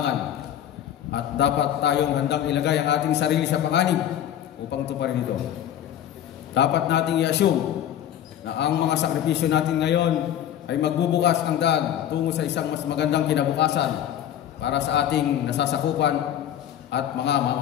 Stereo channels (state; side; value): quieter; right; 10.7 dB